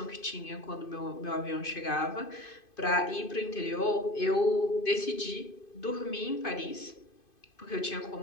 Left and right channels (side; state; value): right; late; 2.5 ms